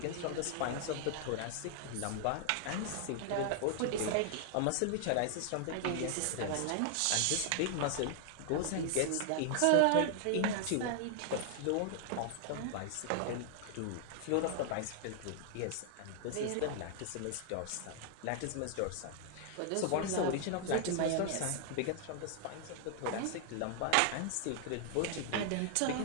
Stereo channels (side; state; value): both; different; correlation 0.00